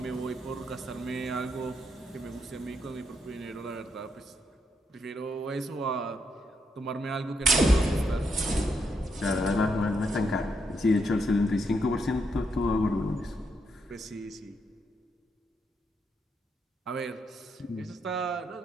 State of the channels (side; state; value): both; normal; correlation 0.78